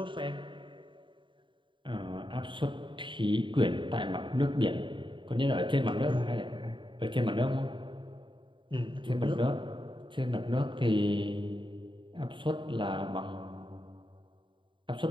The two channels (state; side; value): late; left; 0.24 ms